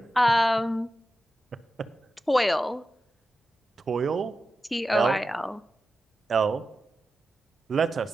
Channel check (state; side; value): normal; both; correlation 0.92